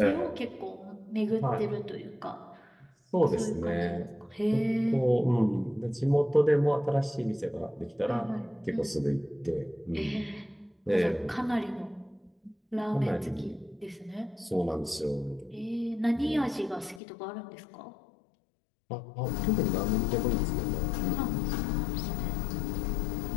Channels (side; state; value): right; drops out; at 17.0 s